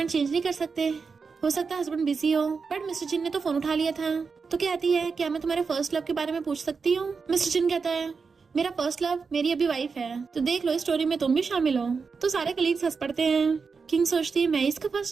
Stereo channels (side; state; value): left; quieter; 5.1 dB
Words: चेंज नहीं कर सकते, हो सकता है हस्बैंड बिजी हो। बट मिस्टर जिन ने तो फोन उठा लिया था। तो कहती है क्या मैं तुम्हारे फर्स्ट लव के बारे में पूछ सकती हूँ? मिस्टर जिन कहता है मेरा फर्स्ट लव मेरी अभी वाइफ है, तो देख लो इस स्टोरी में तुम भी शामिल हो। तो सारे कलीग्स हंस पड़ते हैं। किंग सोचती है मैं इसका